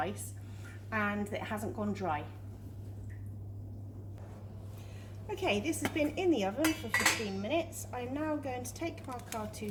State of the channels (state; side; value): identical; both; correlation 1.00